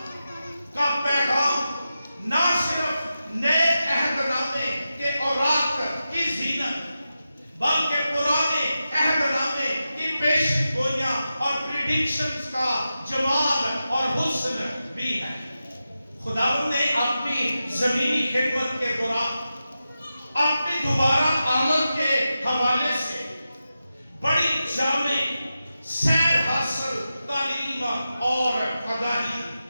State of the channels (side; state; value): both; inverted; correlation -0.91